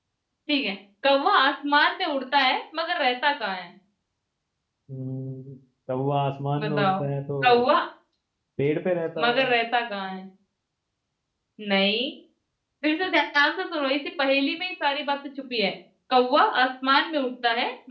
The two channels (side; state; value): both; identical; correlation 1.00